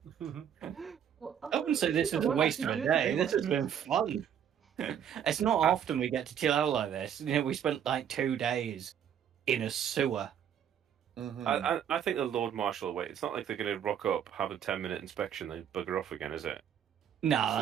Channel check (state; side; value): quieter; left; 8.9 dB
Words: Well, I wouldn't say this is a waste of a day. This has been fun. It's not often we get to chill out like this. You know, we spent like 2 days in a sewer. Mm-hmm. I think the Lord Marshal will wait. It's not like they're going to rock up, have a 10-minute inspection, then bugger off again, is it? No, So